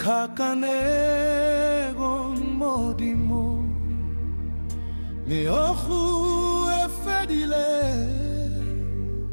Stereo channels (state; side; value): inverted; both; correlation -1.00